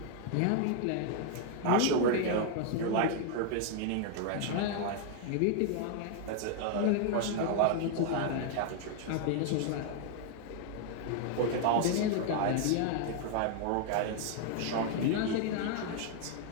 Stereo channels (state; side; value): different; both; correlation 0.00